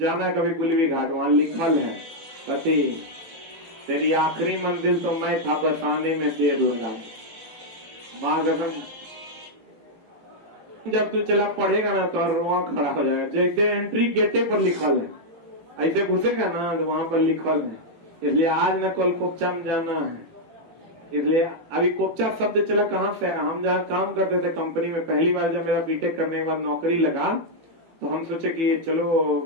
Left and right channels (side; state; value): left; late; 18 ms